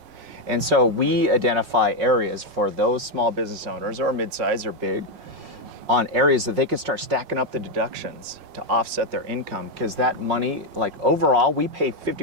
And so we identify areas for those small business owners or mid-size or big on areas that they can start stacking up the deductions to offset their income, because that money, like overall, we pay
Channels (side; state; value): left; late; 5.5 ms